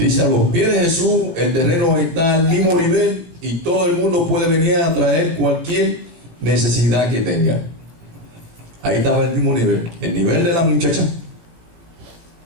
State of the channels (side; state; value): left; late; 18 ms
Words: a los pies de Jesús el terreno está al mismo nivel y todo el mundo puede venir a traer cualquier necesidad que tenga. Ahí estaba el mismo nivel, el nivel de la muchacha